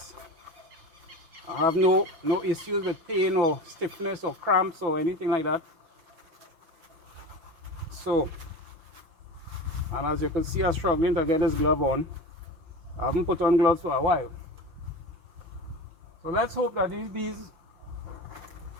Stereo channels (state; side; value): late; left; 5.7 ms